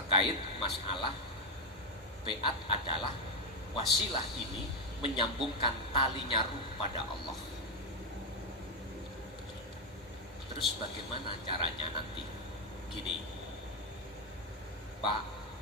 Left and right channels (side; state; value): both; normal; correlation 0.05